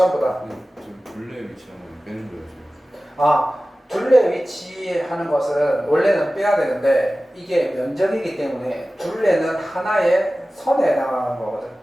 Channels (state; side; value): normal; both; correlation 0.96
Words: 다. 저 둘레에 위치하는 건 빼는 거예요. 둘레 위치하는 것은 원래는 빼야 되는데 이게 면적이기 때문에 둘레는 하나의 선에 해당하는 거거든.